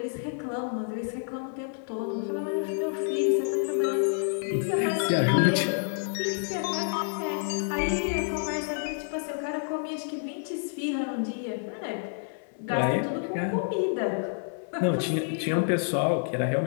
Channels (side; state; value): right; silent; 59 dB below the other